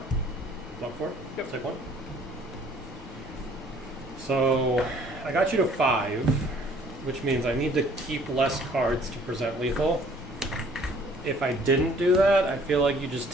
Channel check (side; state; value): both; normal; correlation 0.57